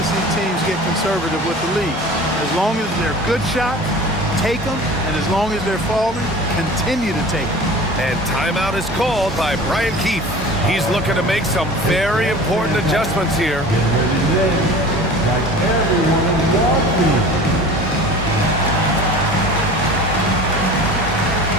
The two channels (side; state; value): both; normal; correlation 0.40